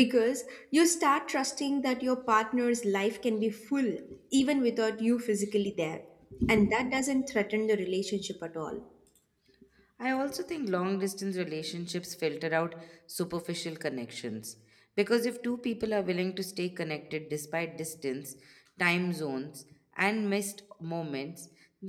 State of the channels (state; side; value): identical; both; correlation 1.00